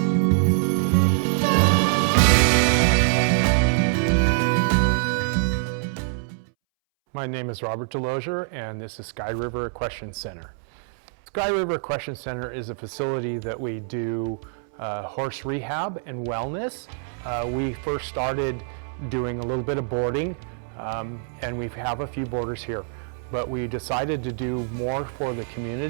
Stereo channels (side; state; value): left; silent; 62 dB below the other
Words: My name is Robert Delosier, and this is Sky River Equestrian Center. Sky River Equestrian Center is a facility that we do horse rehab and wellness. We first started doing a little bit of boarding, and we have a few boarders here. But we decided to do more for the